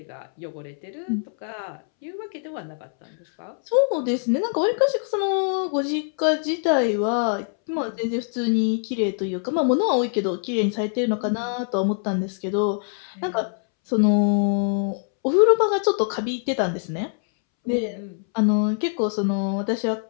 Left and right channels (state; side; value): silent; right; 63 dB below the other